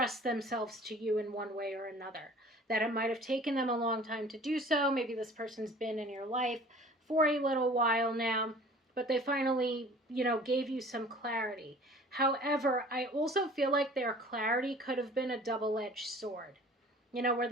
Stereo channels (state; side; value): normal; both; correlation 0.47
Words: themselves to you in one way or another. That it might have taken them a long time to do so. Maybe this person's been in your life for a little while now, but they finally, gave you some clarity. However, I also feel like their clarity could have been a double-edged sword. Where